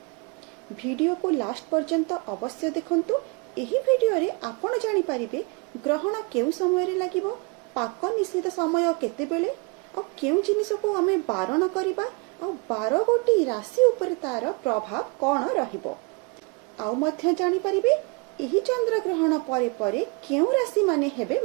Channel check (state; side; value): quieter; left; 30.0 dB